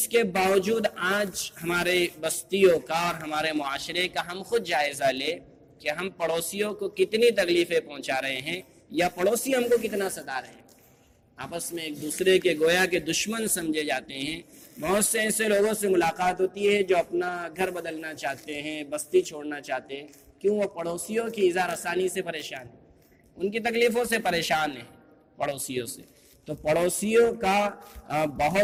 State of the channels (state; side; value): identical; both; correlation 1.00